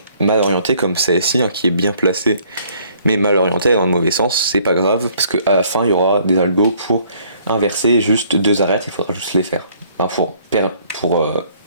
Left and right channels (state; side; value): inverted; both; correlation -0.61